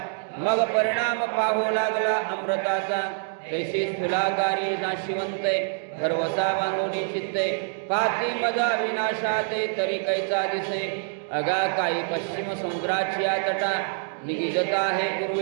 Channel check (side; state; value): left; silent; digital silence